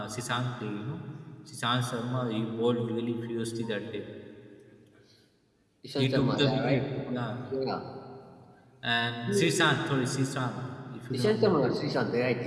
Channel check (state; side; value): identical; both; correlation 1.00